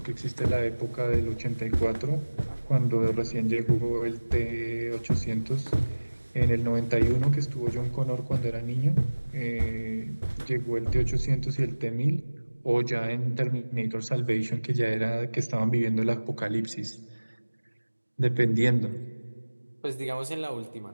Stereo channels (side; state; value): both; inverted; correlation -1.00